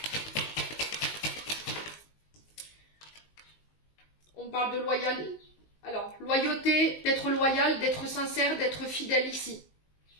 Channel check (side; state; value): right; late; 19 ms